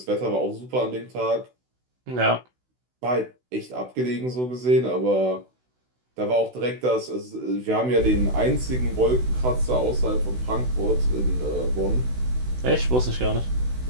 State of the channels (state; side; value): late; left; 16 ms